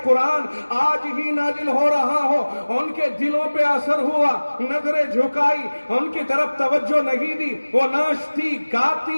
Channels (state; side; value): inverted; both; correlation -1.00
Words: قرآن آج ہی نازل ہو رہا ہو. ان کے دلوں پہ اثر ہوا، نظریں جھکائی، ان کی طرف توجہ نہیں دی، وہ ناچتی